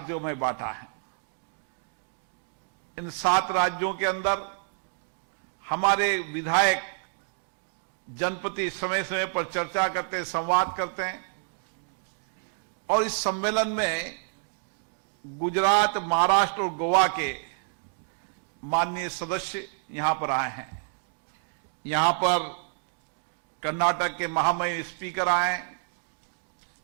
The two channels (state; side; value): silent; left; digital silence